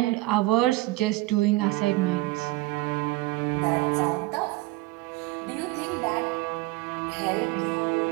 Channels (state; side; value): quieter; left; 20.4 dB